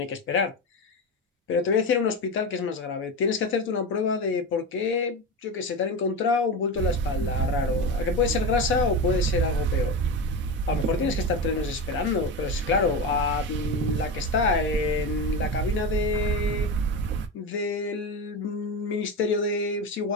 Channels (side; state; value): both; normal; correlation 0.20